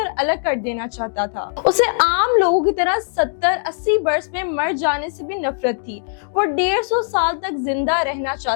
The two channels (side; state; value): right; silent; digital silence